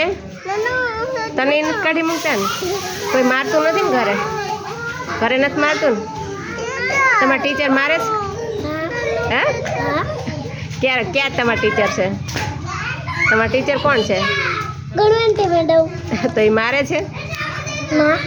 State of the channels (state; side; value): identical; both; correlation 1.00